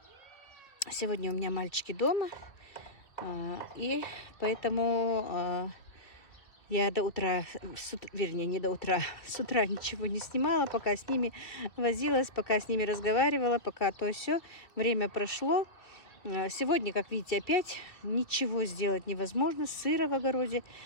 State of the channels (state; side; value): late; right; 1.9 ms